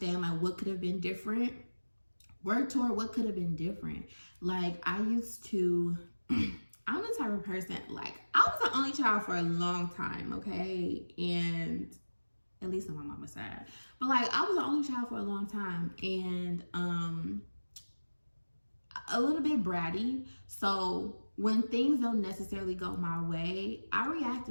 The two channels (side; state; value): both; inverted; correlation -1.00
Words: like what could have been different, work toward what could have been different. Like, I used to I'm the type of person, like, I was the only child for a long time, okay? And at least on my mama's side. But like, I was the only child for a long time, and a little bit bratty. So when things don't necessarily go my way, I react